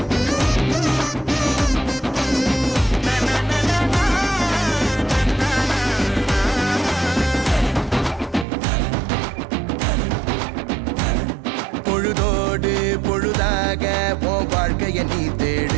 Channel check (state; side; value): drops out; left; at 8.5 s